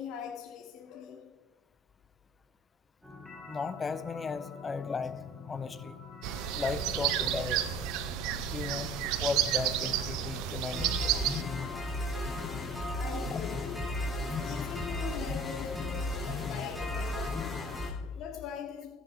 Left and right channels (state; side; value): normal; both; correlation 0.47